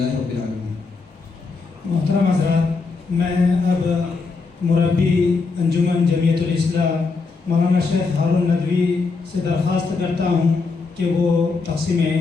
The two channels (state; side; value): quieter; right; 4.3 dB